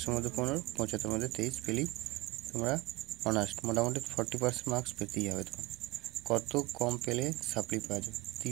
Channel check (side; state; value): left; quieter; 19.4 dB